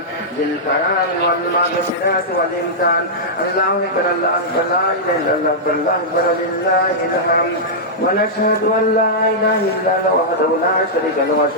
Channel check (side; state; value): both; normal; correlation -0.11